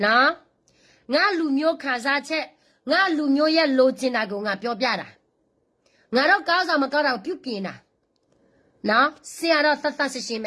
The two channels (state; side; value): identical; both; correlation 1.00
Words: နော်ငါလူမျိုးခါစားချက်ငါလူမျိုးရဲ့လိုချင်တာကိုငါပြောပြတာငါတော့ကောင်းဆောင်မကောင်းတာကိုပြုပြင်တာနော်ဆရာတော့သတ်ရှင်းပ